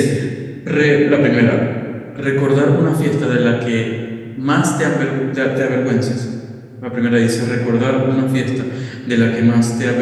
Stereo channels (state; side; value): identical; both; correlation 1.00